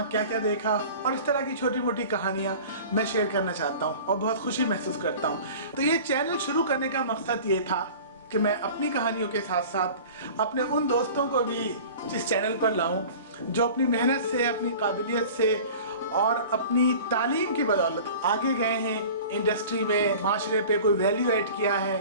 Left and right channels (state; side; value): inverted; both; correlation -0.41